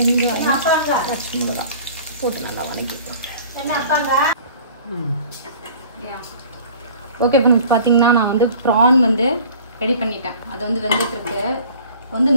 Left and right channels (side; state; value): both; inverted; correlation -0.47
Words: பச்சை மிளகா போட்டு நல்லா வதக்கிட்டோம். என்ன அப்பாங்க? ஓகே ஃப்ரெண்ட்ஸ், பார்த்தீங்கன்னா நான் வந்து ப்ரான் வந்து ரெடி பண்ணிட்டேன். அது வந்து வெந்துட்டுருக்கு. வந்து